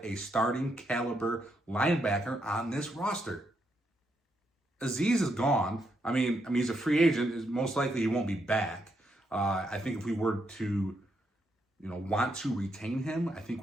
a starting caliber linebacker on this roster. Azeez is gone. I mean, he's a free agent. Most likely he won't be back. I think if we were to, want to retain him, I think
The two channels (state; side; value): normal; both; correlation 0.79